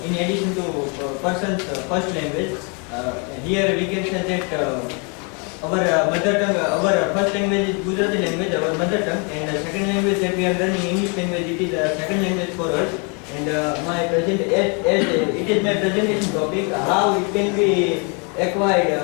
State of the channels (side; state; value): right; quieter; 35.1 dB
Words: in addition to person's first language. Here we can say that our mother tongue, our first language is Gujarati language, our mother tongue, and the second language that we are learning English language, it is a second language for us. And it is my presentation topic, how it can be acquired